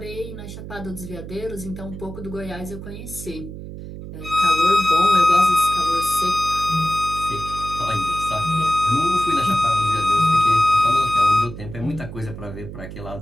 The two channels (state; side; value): noise; right; hum, 11 dB below the sound